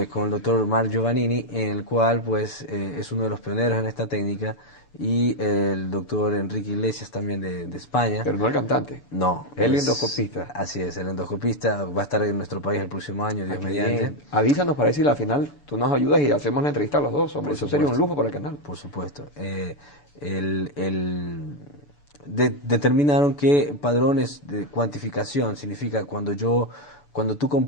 con el doctor Marc Giovannini, en el cual pues es uno de los pioneros en esta técnica, y el doctor Enrique Iglesias también de España. Pero no el cantante. No, El endoscopista. así es, el endoscopista va a estar en nuestro país el próximo año, Dios Qué mediante. bien. Avísanos para decir al final tú nos ayudas y hacemos la entrevista a los dos. Hombre, Por eso sería un supuesto. lujo para el canal. Por supuesto. Determinaron que padrones de cuantificación significa cuando tú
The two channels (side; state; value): right; late; 6.9 ms